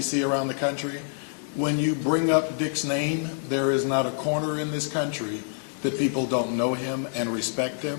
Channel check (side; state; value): right; silent; digital silence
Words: around the country, when you bring up Dick's name, there is not a corner in this country that people don't know him and respect him.